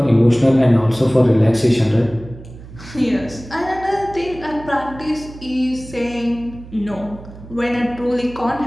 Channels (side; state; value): right; noise; hum, 17 dB below the sound